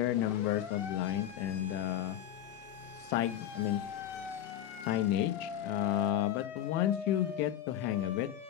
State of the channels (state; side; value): quieter; right; 11.2 dB